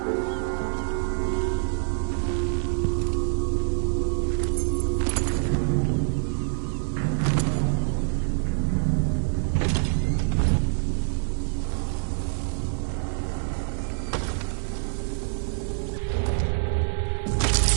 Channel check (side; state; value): left; silent; digital silence